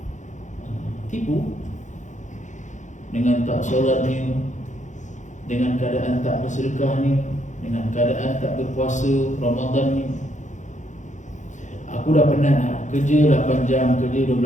Tipu dengan tak solatnya, dengan keadaan tak bersedekahnya, dengan keadaan tak berpuasa Ramadan ni. Aku dah penat kerja 8 jam, kerja 12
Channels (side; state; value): right; late; 0.35 ms